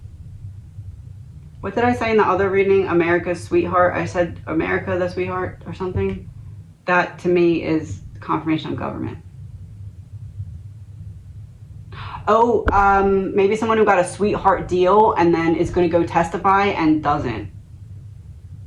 What did I say in the other reading? America's sweetheart. I said America the sweetheart or something. That to me is confirmation of government. Oh, maybe someone who got a sweetheart deal and then is going to go testify and doesn't.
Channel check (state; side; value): identical; both; correlation 1.00